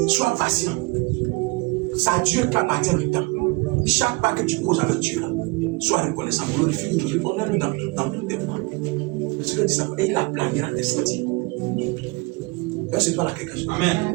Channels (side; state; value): left; quieter; 26.1 dB